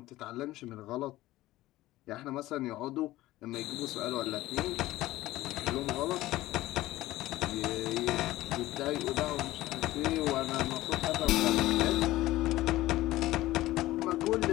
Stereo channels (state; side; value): quieter; right; 16.7 dB